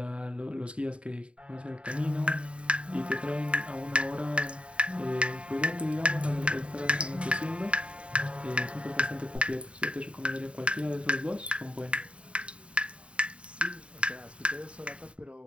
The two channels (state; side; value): late; left; 0.059 ms